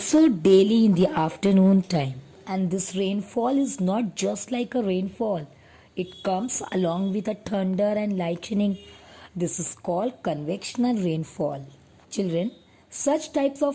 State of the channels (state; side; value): identical; both; correlation 1.00